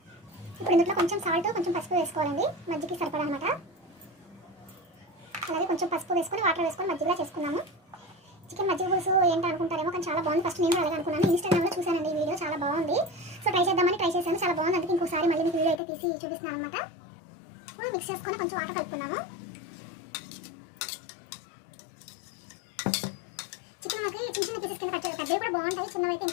ఇప్పుడు ఇందులో కొంచెం సాల్ట్, కొంచెం పసుపు వేసుకోవాలండి, మజ్జిగకి సరిపడా అనమాట. అలాగే కొంచెం పసుపు వేసుకొని వాటర్ వేసుకొని మజ్జిగలా చేసుకున్నాము. చికెన్ మజ్జిగ పులుసు ఏంటి అనుకుంటారేమో, కానీ చాలా బాగుంది. ఫస్ట్ నేను అలాగే అనుకున్నాను, ఇన్స్టాగ్రామ్లో చూసానండి ఈ వీడియో, చాలా బాగుంది. సో ట్రై చేద్దామని ట్రై చేశాను, చాలా బాగుంది. అందుకే ఇంకోసారి మళ్ళీ మీకు వీడియో అయితే తీసి చూపిస్తున్నాను అనమాట. ఇప్పుడు మిక్స్ చేసుకొని కొంచెం వాటర్ కలుపుకున్నాము. చికెన్ మనకి చిన్న చిన్న పీసెస్ కింద కట్ చేయాలి, పెద్దవి కూడా బాగుంటాయి, చిన్నవి అయితే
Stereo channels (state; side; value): drops out; right; at 15.8 s